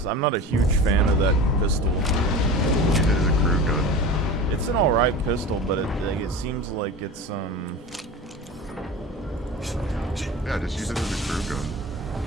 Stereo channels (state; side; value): normal; both; correlation 0.32